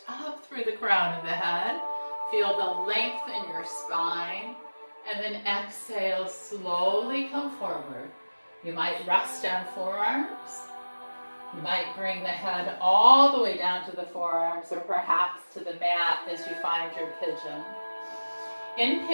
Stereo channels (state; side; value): inverted; both; correlation -1.00